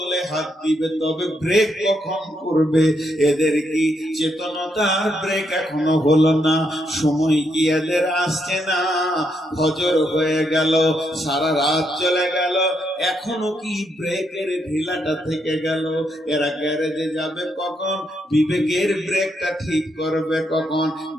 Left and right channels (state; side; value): normal; both; correlation 0.78